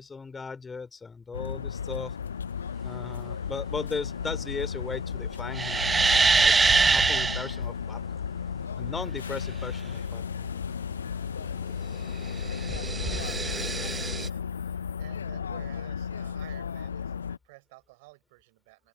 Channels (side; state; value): both; normal; correlation 0.49